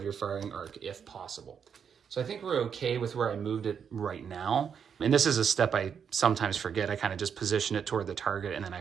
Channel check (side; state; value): left; quieter; 7.3 dB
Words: your firing arc if possible. So I think we're okay with where I moved it right now. And this is a step I sometimes forget. I kind of just position it toward the target and then I